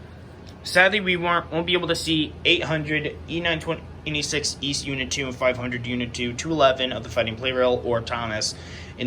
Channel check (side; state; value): both; identical; correlation 1.00